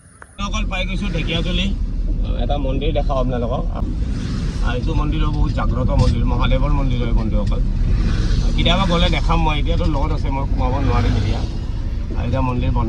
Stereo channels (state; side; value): identical; both; correlation 1.00